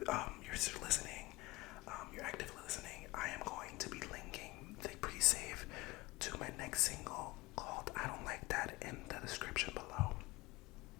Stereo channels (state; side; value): quieter; right; 21.9 dB